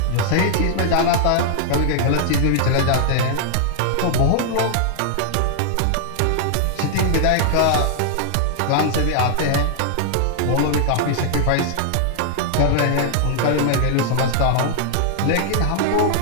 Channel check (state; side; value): different; both; correlation -0.01